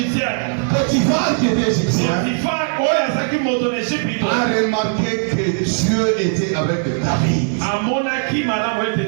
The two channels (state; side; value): silent; left; 61 dB below the other